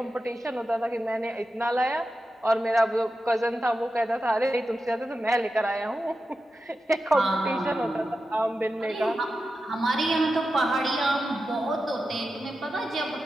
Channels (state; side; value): normal; both; correlation 0.91